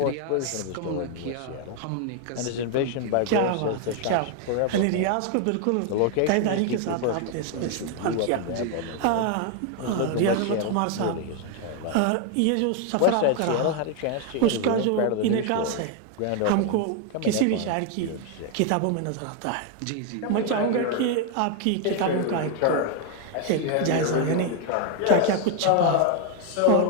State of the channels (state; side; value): different; both; correlation 0.00